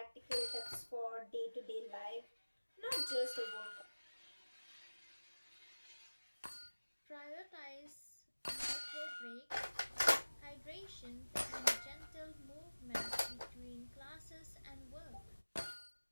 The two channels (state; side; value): inverted; both; correlation -1.00